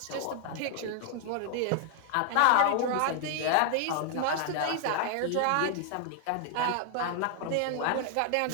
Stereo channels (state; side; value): different; both; correlation 0.00